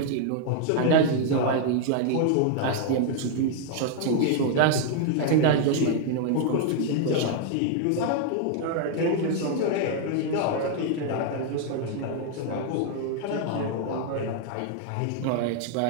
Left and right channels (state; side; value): different; both; correlation 0.00